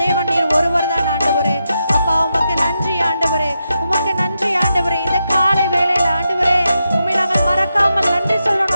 தேவன் நீர் ஒருவர் தான் ஆண்டவரே. அப்பா உமக்கு நன்றி ஆண்டவரே, உமக்கு நன்றி ஆண்டவரே. இந்த காலை வேளையில ஆண்டவரே உம்மை நாங்கள் மறக்காமல் நன்றி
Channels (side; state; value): both; inverted; correlation -0.86